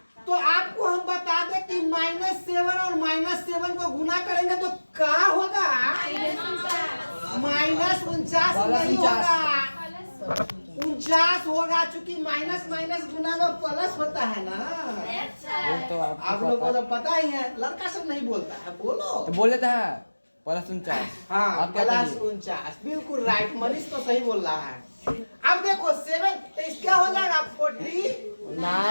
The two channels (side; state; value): both; inverted; correlation -1.00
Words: तो आपको हम बता दें कि -7 और -7 को गुना करेंगे तो क्या होगा, -49 नहीं होगा, 49 होगा, चूंकि माइनस गुना में प्लस होता है ना। तो आप लोगों को तो पता ही है, लड़का सब नहीं बोलता है, बोलो तो बोल लेता है। +49। हाँ आप क्या +49, बिल्कुल राइट, मनीष तो सही बोल रहा है। अब देखो 7 तो इस क्या हो जाएगा